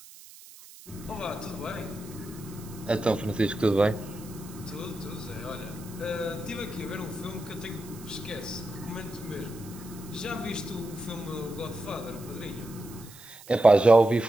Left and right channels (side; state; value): right; noise; hiss, 19 dB below the sound